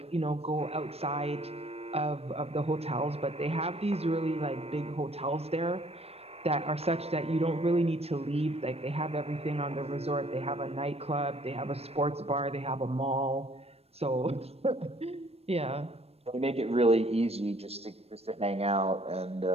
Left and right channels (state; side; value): late; left; 0.29 ms